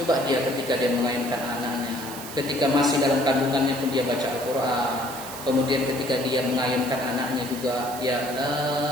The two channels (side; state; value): right; noise; hiss, 12 dB below the sound